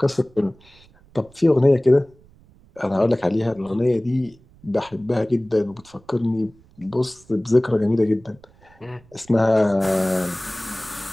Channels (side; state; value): right; noise; rumble, 28 dB below the sound